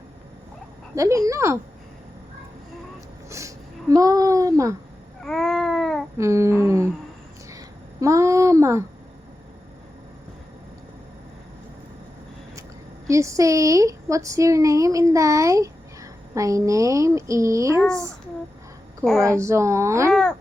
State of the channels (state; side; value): normal; both; correlation 0.92